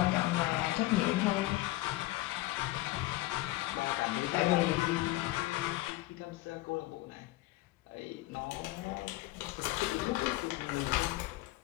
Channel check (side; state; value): right; quieter; 18.3 dB